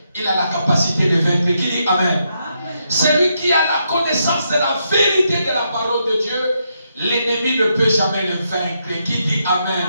il a la capacité de vaincre. Qui dit Amen? Amen. Celui qui a la connaissance de la vérité de la parole de Dieu, l'ennemi ne peut jamais le vaincre. Qui dit Amen?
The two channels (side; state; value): both; inverted; correlation -0.80